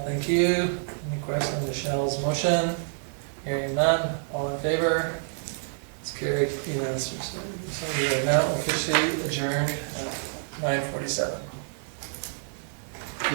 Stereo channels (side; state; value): left; silent; digital silence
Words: thank you. Any question on Michelle's motion? Hearing none, all in favor? It's carried unanimously. So we are now officially adjourned at 9:47.